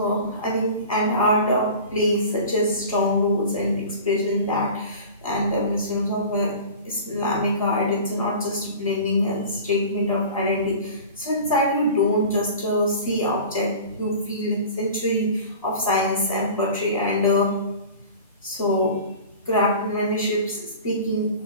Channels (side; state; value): both; inverted; correlation -0.38